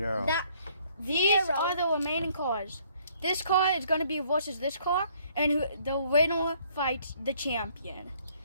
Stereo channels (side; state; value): both; inverted; correlation -0.63